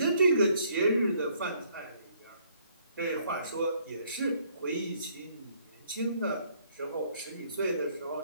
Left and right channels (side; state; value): both; inverted; correlation -0.66